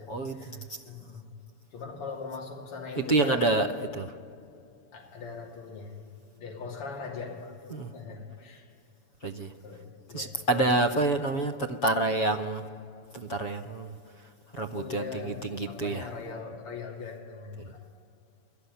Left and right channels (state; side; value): late; right; 7.1 ms